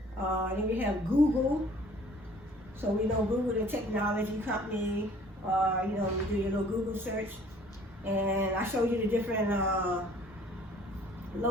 Then we have Google. So we know Google, the technology company. You do your little Google search, and I showed you the different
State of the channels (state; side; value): normal; both; correlation 0.54